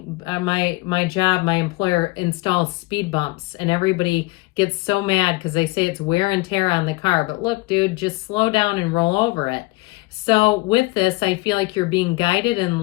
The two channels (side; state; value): right; quieter; 22.5 dB